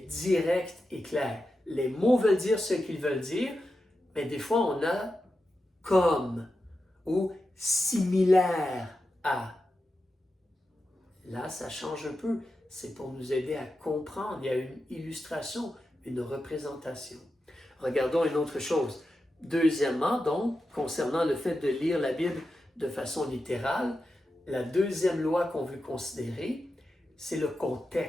directe et claire. Les mots veulent dire ce qu'ils veulent dire, mais des fois, on a comme ou similaire à. Là, ça change un peu. C'est pour nous aider à comprendre. Il y a une illustration, une représentation. Regardons une autre chose. Deuxièmement, donc, concernant le fait de lire la Bible de façon littérale, la deuxième loi qu'on veut considérer, c'est le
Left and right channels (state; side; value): normal; both; correlation 0.90